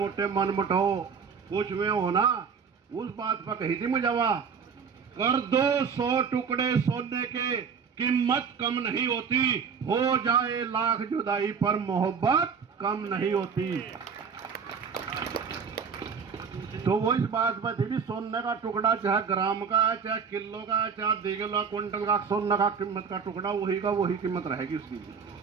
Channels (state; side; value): quieter; left; 6.2 dB